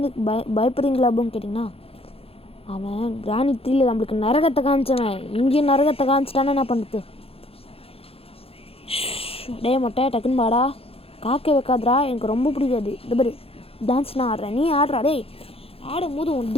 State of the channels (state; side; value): late; right; 0.28 ms